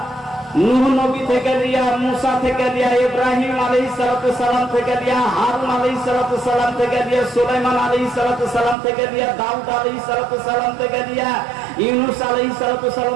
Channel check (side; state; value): left; drops out; at 8.8 s